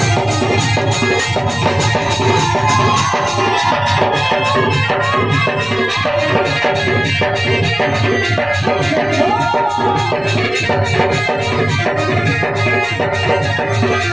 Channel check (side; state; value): right; noise; rumble, 22 dB below the sound